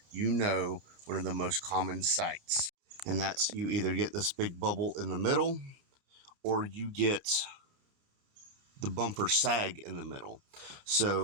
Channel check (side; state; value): left; late; 30 ms